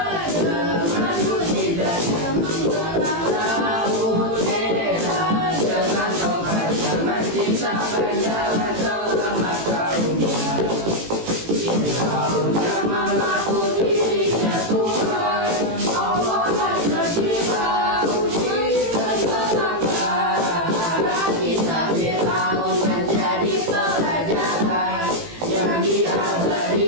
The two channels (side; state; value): left; late; 18 ms